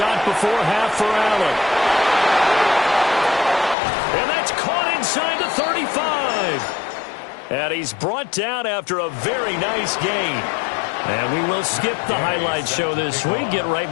before half for Allen. And that's caught inside the 35. And he's brought down after a very nice gain. And we will skip the highlight show this week. Get right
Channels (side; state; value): right; drops out; at 3.8 s